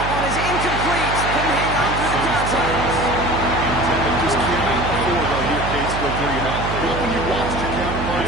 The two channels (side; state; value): right; noise; hum, 5 dB below the sound